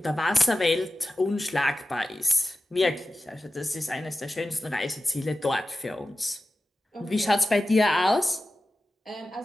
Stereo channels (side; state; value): both; normal; correlation 0.93